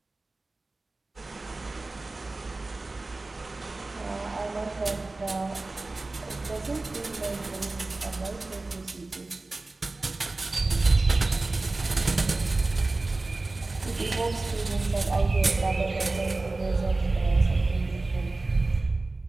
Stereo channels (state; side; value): quieter; left; 3.2 dB